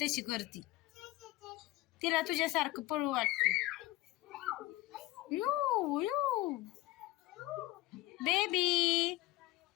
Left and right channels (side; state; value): right; quieter; 18.3 dB